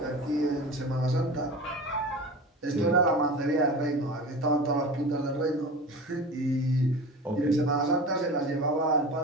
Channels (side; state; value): both; normal; correlation 0.33